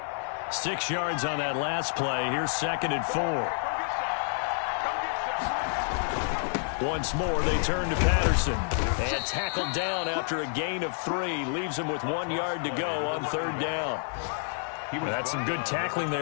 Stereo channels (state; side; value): silent; right; 59 dB below the other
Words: 6 yards on that last play. Here's 2nd and 4. Once more, they turn to Patterson. And tackled down after a gain of 3. Leaves him with 1 yard to go on 3rd down. That's some good tackling